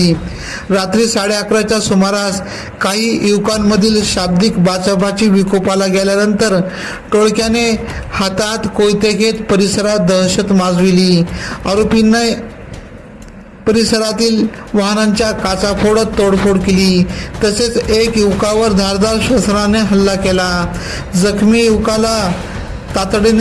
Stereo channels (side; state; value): both; identical; correlation 1.00